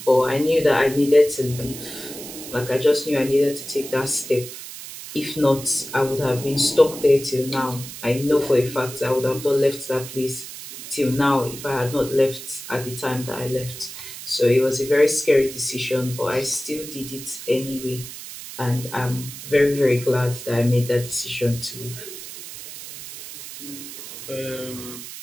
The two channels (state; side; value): noise; right; hiss, 12 dB below the sound